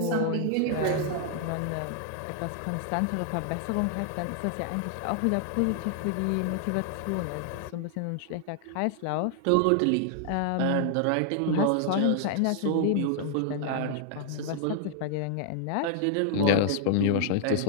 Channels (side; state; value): both; different; correlation -0.01